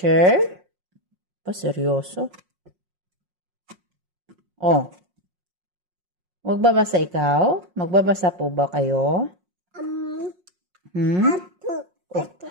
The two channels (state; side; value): late; left; 5.5 ms